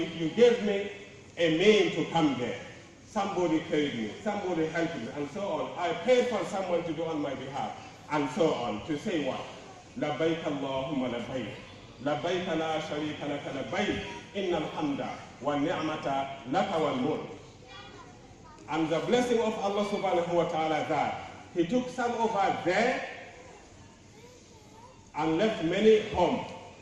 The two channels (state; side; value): identical; both; correlation 1.00